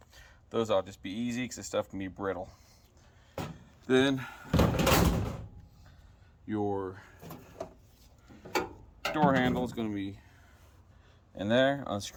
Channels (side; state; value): both; identical; correlation 1.00